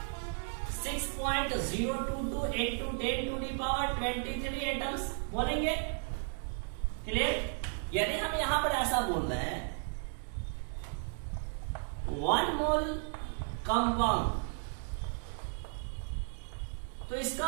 6.022 इंटू 10⁻23 एटम्स बोलेंगे। क्लियर? यदि हम यहां पर ऐसा बोल रहे हैं 1 मोल कंपाउंड तो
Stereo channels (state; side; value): silent; left; 55 dB below the other